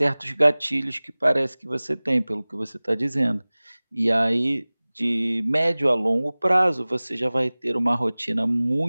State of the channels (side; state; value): both; inverted; correlation -1.00